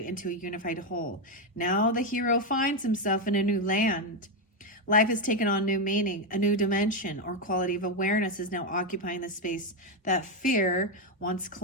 into a unified whole. Now the hero finds himself in a new land. Life has taken on new meaning, a new dimension or quality of awareness is now occupying the space that fear once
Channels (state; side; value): normal; both; correlation 0.06